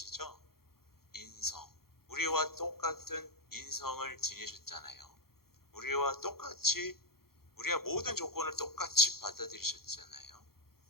인성. 우리와 똑같은 인성을 지니셨잖아요. 우리와 똑같이, 우리가 모든 조건을 똑같이 받아들이셨잖아요.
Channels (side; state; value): right; late; 0.94 ms